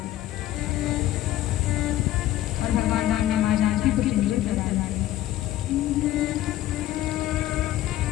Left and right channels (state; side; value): quieter; right; 13.9 dB